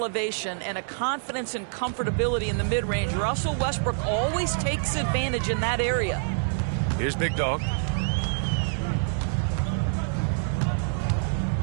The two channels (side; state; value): left; silent; digital silence